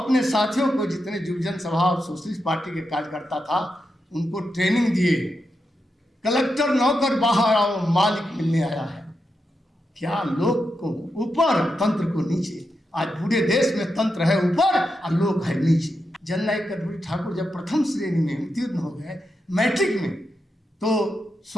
साथियों को, जितने युवजन सभा और सोशलिस्ट पार्टी के कार्यकर्ता था, उनको ट्रेनिंग दिए। कलेक्टर नौकर बाहर आओ, मालिक मिलने आया है। क्या लोग को ऊपर, तंत्र को नीचे। आज पूरे देश में तंत्र है ऊपर और लोग है नीचे। जननायक कर्पूरी ठाकुर जब प्रथम श्रेणी में उत्तीर्ण हो गए मैट्रिक में, तो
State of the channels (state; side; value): normal; both; correlation 0.86